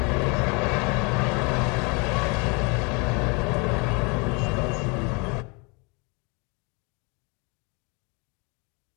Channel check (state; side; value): quieter; right; 30.8 dB